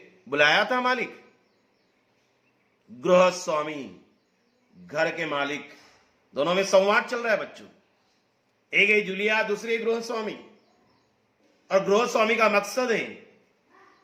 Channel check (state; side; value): identical; both; correlation 1.00